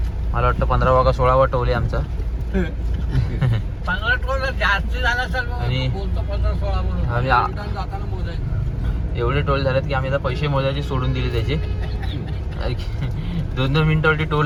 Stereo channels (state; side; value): identical; both; correlation 1.00